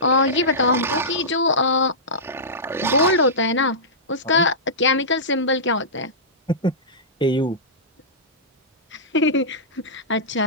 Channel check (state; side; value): normal; both; correlation -0.16